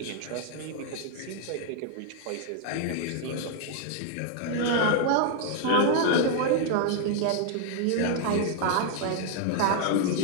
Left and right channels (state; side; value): different; both; correlation 0.00